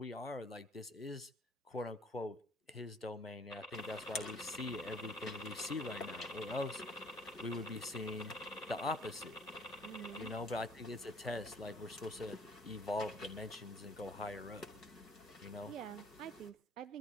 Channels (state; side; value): normal; both; correlation 0.57